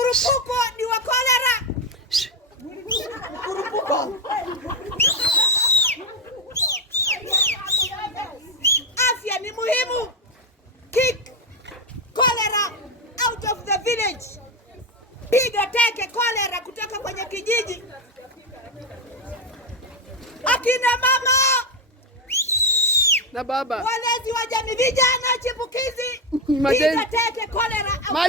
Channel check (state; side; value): normal; both; correlation 0.11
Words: ni wa kolera. Mkurupuko. Afya ni muhimu. Kick cholera out of the village. Piga teke cholera kutoka kwenye kijiji. Akina mama na baba, walezi wa jamii, vijana chipukizi, piga teke cholera.